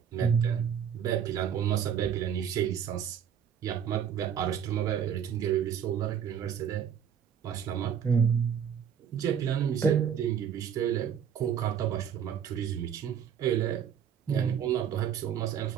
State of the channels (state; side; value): quieter; left; 8.4 dB